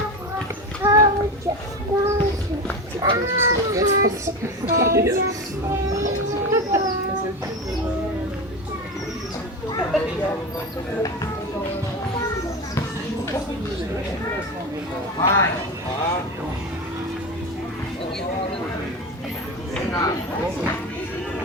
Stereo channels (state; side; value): normal; both; correlation 0.23